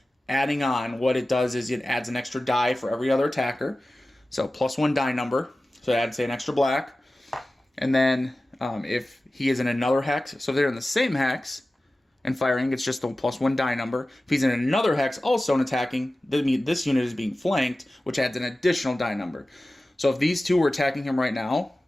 adding on, what it does is it adds an extra die for every other attacker, so +1 die number, so it adds, say, an extra black. And then if he is in another hex, so if they're in the same hex and firing, it's just the +1 die number. If he's in another hex also and attacking, this unit is being flanked, which adds an additional die number. So if these two were attacking him right now,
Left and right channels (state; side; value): normal; both; correlation 0.96